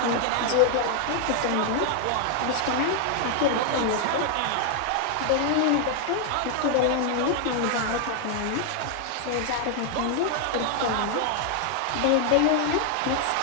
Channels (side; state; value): both; different; correlation 0.00